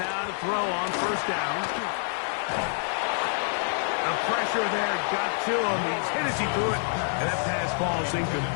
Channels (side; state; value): right; silent; 60 dB below the other